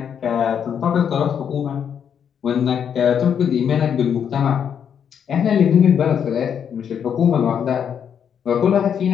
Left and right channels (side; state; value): right; quieter; 8.0 dB